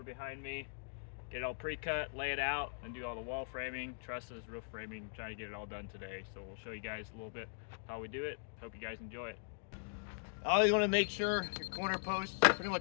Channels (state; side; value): silent; right; digital silence